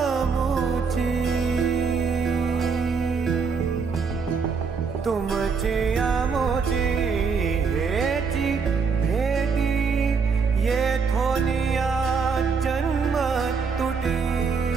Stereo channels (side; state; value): left; quieter; 5.4 dB